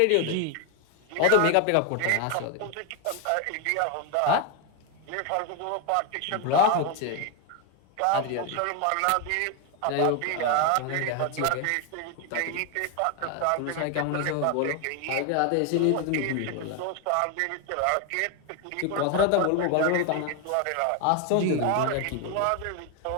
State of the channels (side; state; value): both; different; correlation 0.01